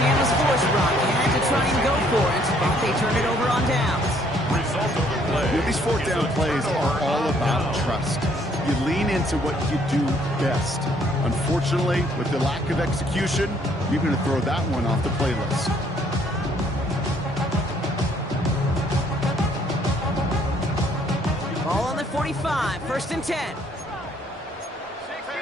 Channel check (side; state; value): both; normal; correlation 0.65